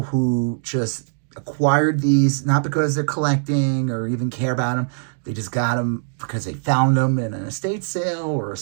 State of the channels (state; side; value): silent; left; digital silence